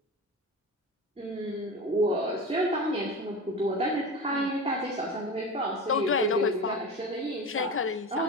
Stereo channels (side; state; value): both; normal; correlation 0.28